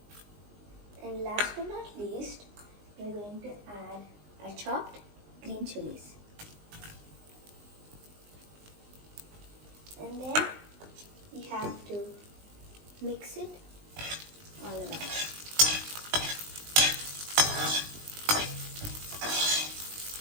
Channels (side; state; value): left; late; 19 ms